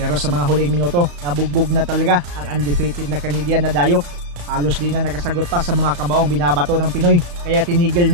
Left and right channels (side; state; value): left; late; 34 ms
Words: sa mga huling minuto, nabugbog na talaga ang undefeated na Canadian na dayo. Halos di na nakasagot pa sa mga kamaong binabato ng Pinoy. Kaya tinigil